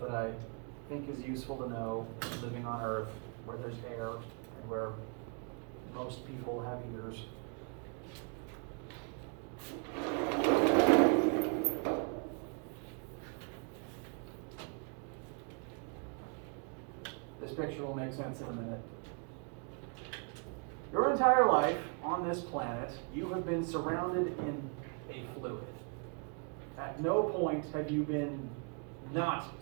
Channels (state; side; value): quieter; left; 38.5 dB